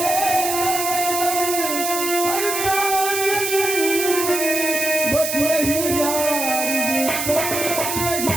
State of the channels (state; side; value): noise; right; hiss, 3 dB below the sound